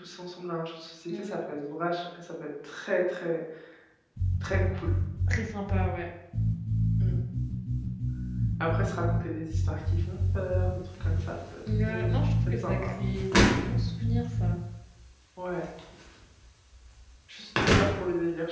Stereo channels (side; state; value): both; identical; correlation 1.00